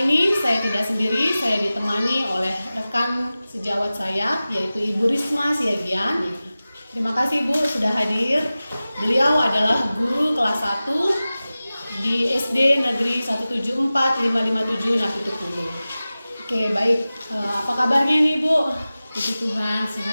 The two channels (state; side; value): inverted; both; correlation -0.97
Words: ini saya tidak sendiri, saya ditemani oleh rekan sejawat saya, yaitu Ibu Risma Siagian. Terima kasih Bu sudah hadir. Beliau adalah guru kelas 1 di SD Negeri 174557 Napitupulu. Oke, baik. Apa kabarnya nih Bu? Puji Tuhan,